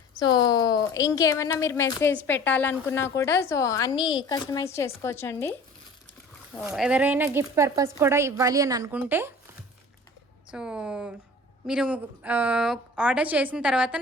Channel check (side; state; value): both; normal; correlation 0.43